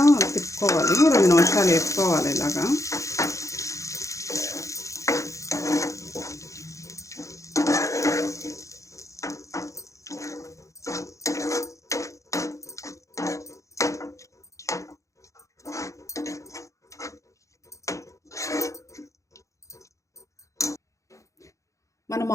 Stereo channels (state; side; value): late; right; 0.15 ms